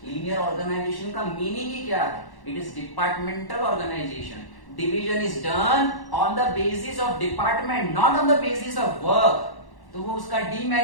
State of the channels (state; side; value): late; right; 1.1 ms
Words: लीनियर ऑर्गेनाइजेशन का मीनिंग ही क्या है? It is departmental organization. Division is done on the basis of department, not on the basis of work. तो वो उसका